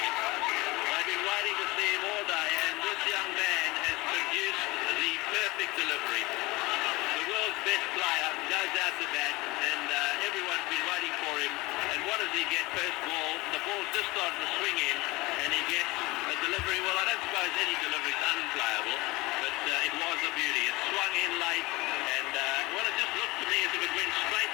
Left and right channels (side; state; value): right; quieter; 22.0 dB